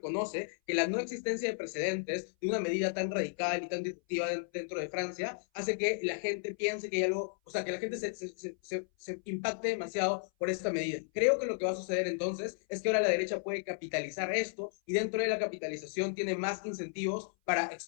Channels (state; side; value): silent; right; 55 dB below the other